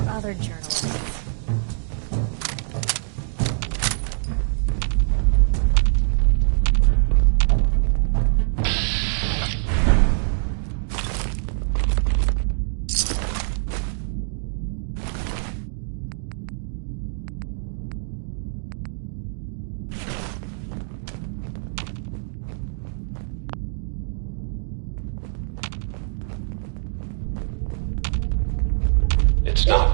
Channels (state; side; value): silent; left; digital silence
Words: other journalists. It's